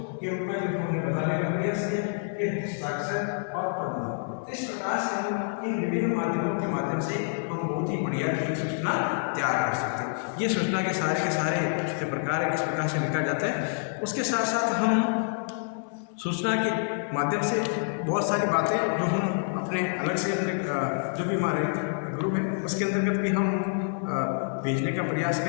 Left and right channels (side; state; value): right; silent; 60 dB below the other